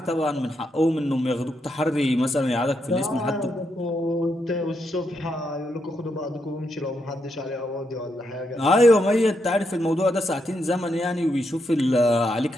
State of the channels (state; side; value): normal; both; correlation 0.81